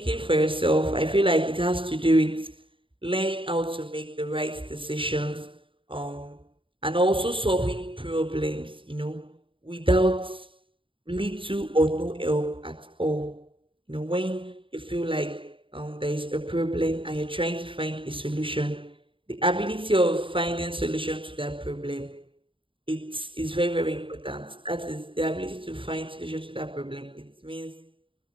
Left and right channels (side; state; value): left; late; 0.25 ms